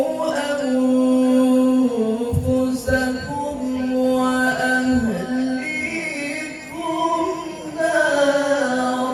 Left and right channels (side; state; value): both; identical; correlation 1.00